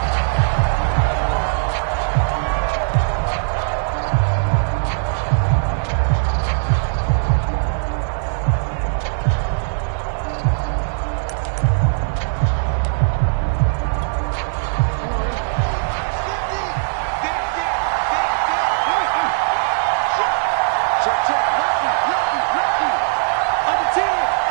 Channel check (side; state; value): left; silent; digital silence